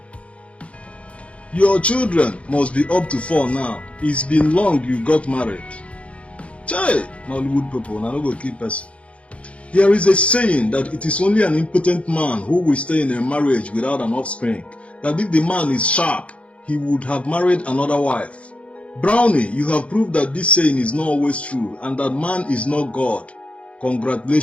Your children must be up to 4 now. It's been long you got married. Chai, Nollywood people, now no go keep person. There is a saying that it is only an impotent man who will stay in a marriage without an offspring. That if the man is sharp, he would have married another wife. Brownie, you have proved that this saying is not always true and that man is not God.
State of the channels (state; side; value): late; right; 0.062 ms